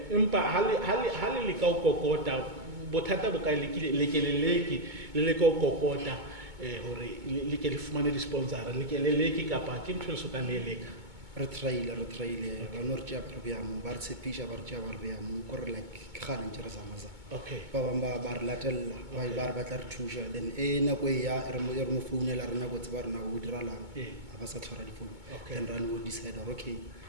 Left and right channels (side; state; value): left; late; 2.2 ms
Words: hale le ka o kokota bothata bo ka lekeleleki le ka o kokota hore le ke le fumane di sponsor le ke leleki kapa ke ntho le soka le leka re traile ba no re tja program ba re tshepisha ba re tja ba re ya mo ko re like ke gane ntse re zamaza okay ba bamba ba re latella ba re batla re thusha then na ko ya re mo founela rena go tse ba rena go diralang ba sa tshwara di phone then run we decide okay